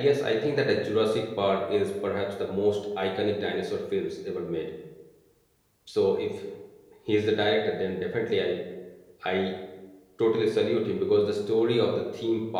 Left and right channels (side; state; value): both; identical; correlation 1.00